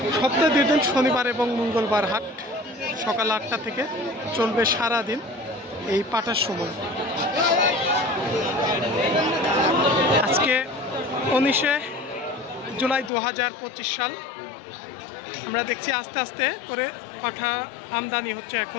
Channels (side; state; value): right; drops out; at 13.1 s